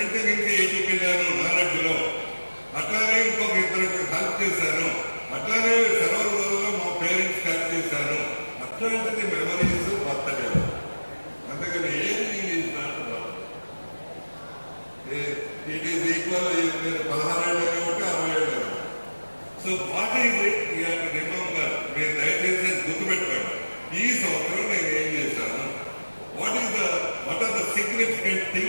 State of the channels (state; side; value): inverted; both; correlation -1.00